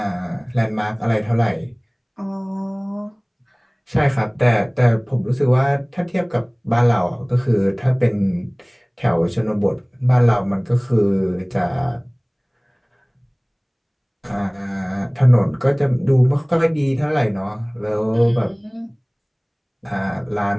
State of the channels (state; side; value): identical; both; correlation 1.00